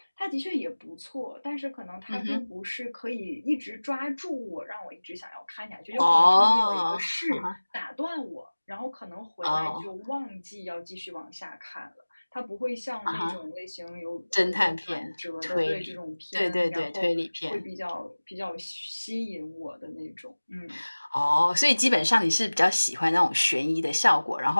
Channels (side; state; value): both; inverted; correlation -1.00